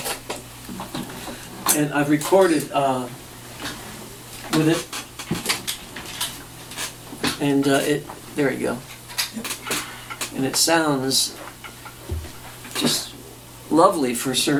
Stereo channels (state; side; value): identical; both; correlation 1.00